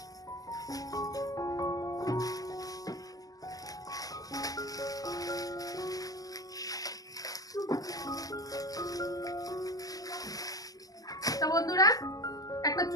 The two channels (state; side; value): late; right; 0.17 ms